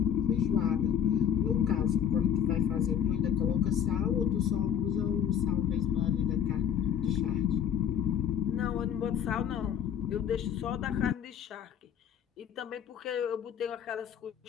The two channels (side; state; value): right; quieter; 8.9 dB